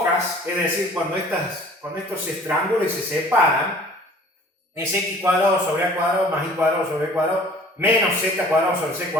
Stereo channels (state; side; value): normal; both; correlation 0.50